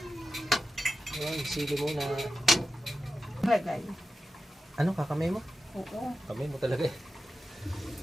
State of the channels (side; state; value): both; normal; correlation 0.91